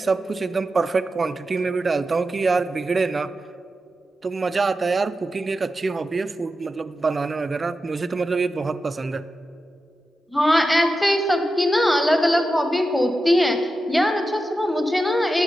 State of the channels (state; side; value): normal; both; correlation 0.90